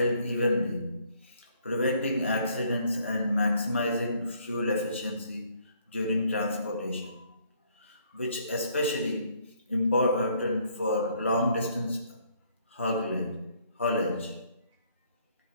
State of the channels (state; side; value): inverted; both; correlation -0.66